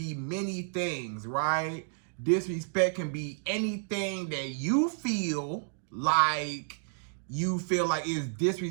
many things, right? Disrespect can be anything that you feel like is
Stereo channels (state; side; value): silent; left; digital silence